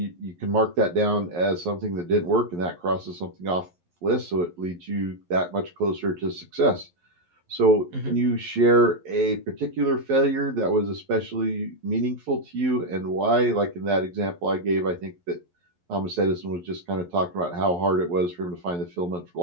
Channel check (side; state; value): left; late; 11 ms